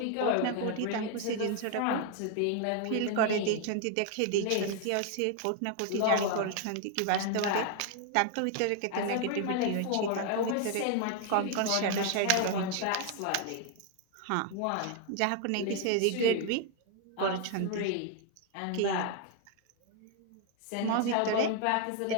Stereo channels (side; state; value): both; different; correlation 0.01